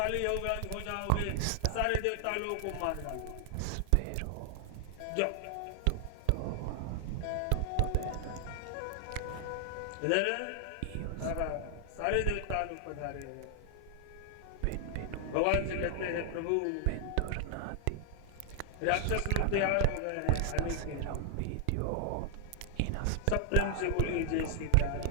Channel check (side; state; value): both; different; correlation 0.00